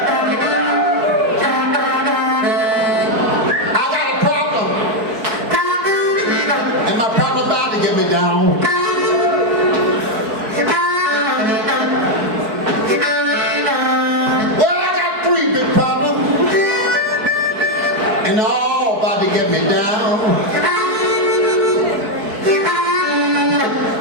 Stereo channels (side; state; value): left; late; 4.6 ms